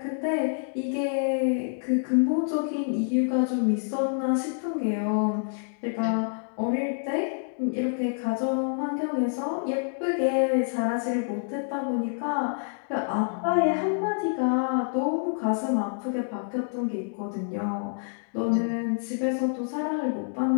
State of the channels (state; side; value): silent; right; digital silence